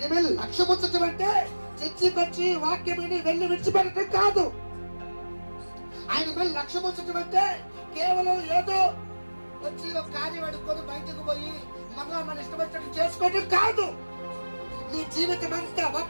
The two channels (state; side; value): inverted; both; correlation -1.00